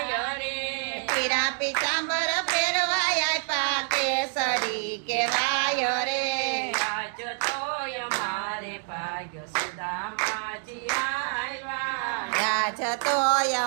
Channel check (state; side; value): silent; left; 55 dB below the other